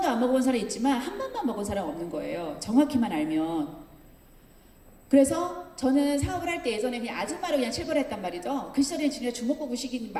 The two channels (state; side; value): identical; both; correlation 1.00